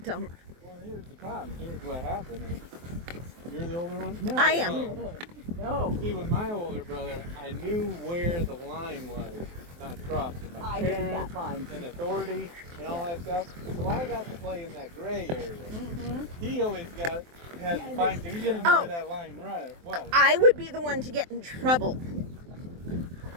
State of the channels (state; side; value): late; left; 23 ms